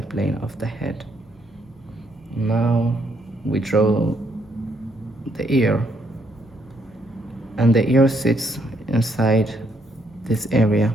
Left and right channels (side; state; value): both; normal; correlation 0.73